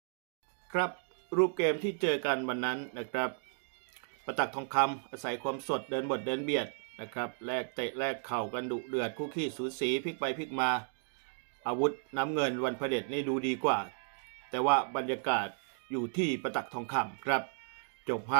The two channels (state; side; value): silent; left; digital silence